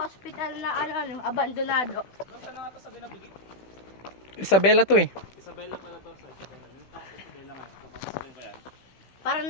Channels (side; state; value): right; late; 15 ms